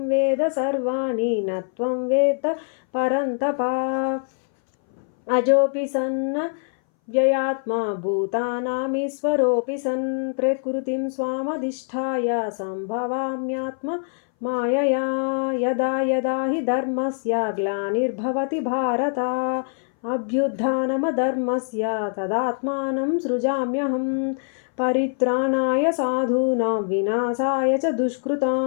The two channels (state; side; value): silent; right; 61 dB below the other